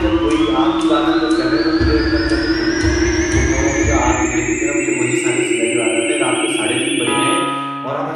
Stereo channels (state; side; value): identical; both; correlation 1.00